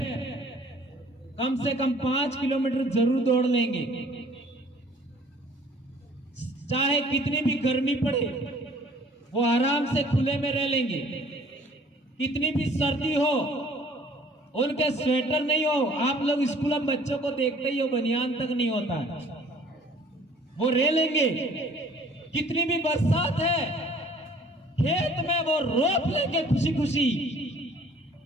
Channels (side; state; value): both; normal; correlation 0.54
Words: कम से कम 5 किलोमीटर जरूर दौड़ लेंगे, चाहे कितनी भी गर्मी पड़े वो आराम से खुले में रह लेंगे, कितनी भी सर्दी हो उनके स्वेटर नहीं हो। आप लोग स्कूल में बच्चों को देखते ही हो, बनियान तक नहीं होता है, वो रह लेंगे। कितनी भी बरसात है, खेत में वो रोप लेंगे खुशी खुशी।